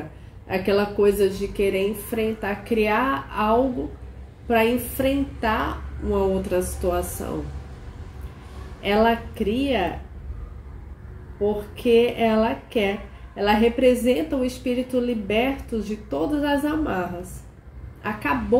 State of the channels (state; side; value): identical; both; correlation 1.00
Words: aquela coisa de querer enfrentar, criar algo para enfrentar uma outra situação. Ela cria porque ela quer. Ela representa o espírito liberto de todas as amarras.